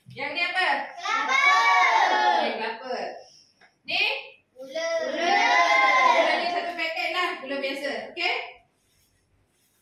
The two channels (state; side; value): identical; both; correlation 1.00